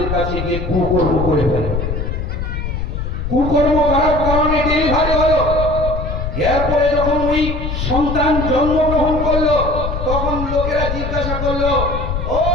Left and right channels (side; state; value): left; noise; rumble, 3 dB below the sound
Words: কাছে গিয়ে কুকর্ম করে ফেলে। কুকর্ম করার কারণে ডেলিভারি হলো। এরপরে যখন ওই সন্তান জন্মগ্রহণ করলো, তখন লোকেরা জিজ্ঞাসা করলো, ও